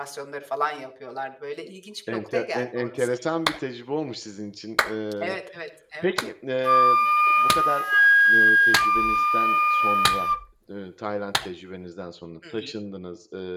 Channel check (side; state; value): both; identical; correlation 1.00